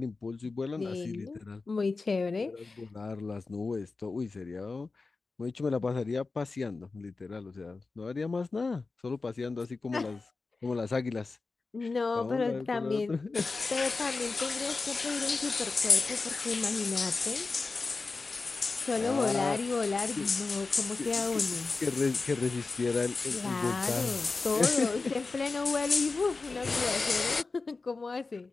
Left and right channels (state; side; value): quieter; right; 3.9 dB